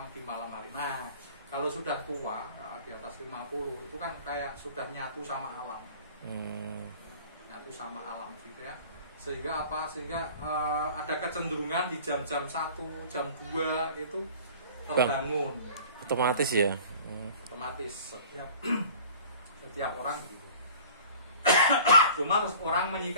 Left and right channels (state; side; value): inverted; both; correlation -0.46